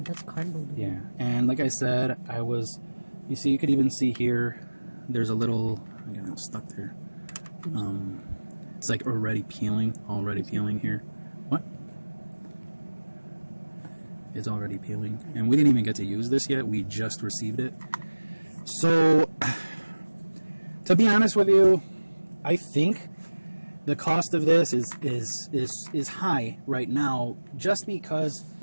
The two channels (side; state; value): both; inverted; correlation -1.00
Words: that's cardboard. Yeah, and like I said, I was, You see, you could even see here, there's a little, I got it stuck there. It's like already peeling here. What? It's already peeling. And we didn't even get to use this yet. We just received it. So, to be honest with you, I think the cost of this is high right now, just because,